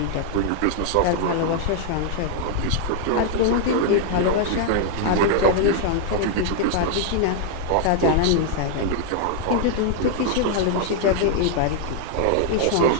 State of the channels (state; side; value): different; both; correlation 0.00